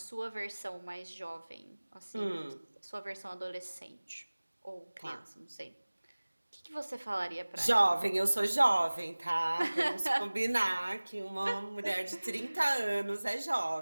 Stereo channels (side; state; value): both; inverted; correlation -1.00